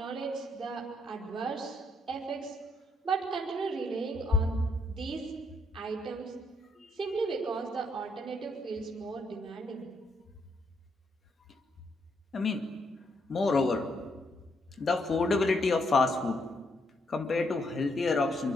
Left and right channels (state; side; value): normal; both; correlation 0.75